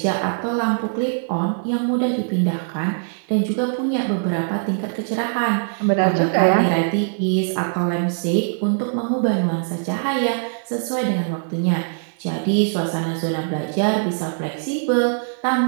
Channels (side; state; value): left; silent; digital silence